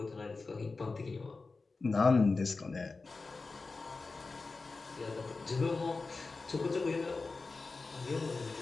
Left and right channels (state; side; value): quieter; right; 3.9 dB